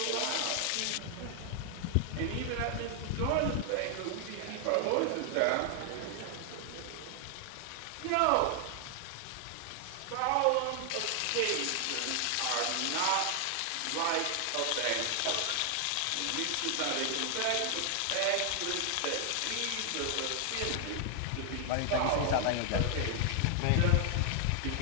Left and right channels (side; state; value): both; different; correlation 0.00